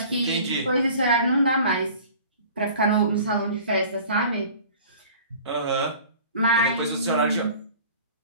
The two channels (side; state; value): both; inverted; correlation -0.45